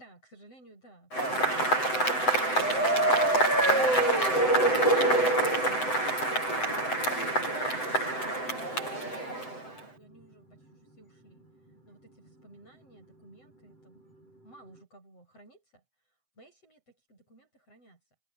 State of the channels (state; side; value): late; right; 7.8 ms